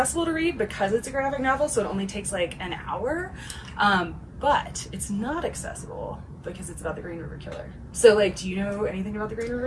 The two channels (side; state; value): both; identical; correlation 1.00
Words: to read because it's a graphic novel, so it only takes like an hour. But it's not accessible because it's about the Green River Killer. So, like, do you know anything about the Green